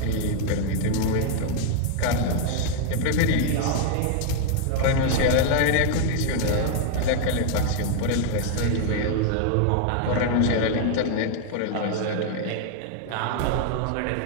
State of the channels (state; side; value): different; both; correlation 0.00